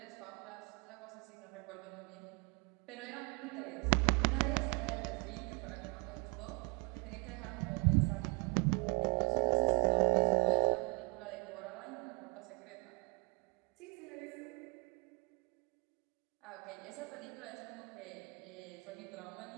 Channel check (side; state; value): left; quieter; 33.1 dB